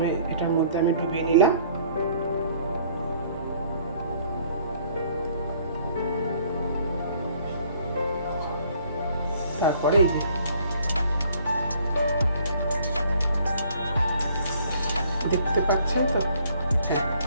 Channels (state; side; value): inverted; both; correlation -0.59